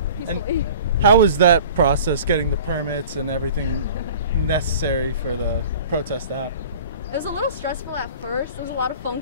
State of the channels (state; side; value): inverted; both; correlation -0.42